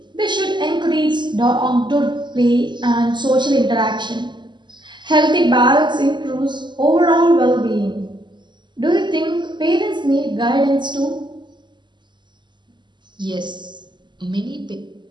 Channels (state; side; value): late; left; 0.22 ms